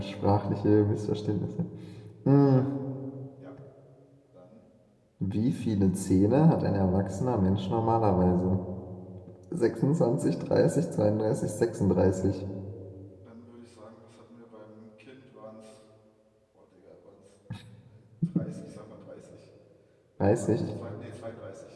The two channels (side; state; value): both; identical; correlation 1.00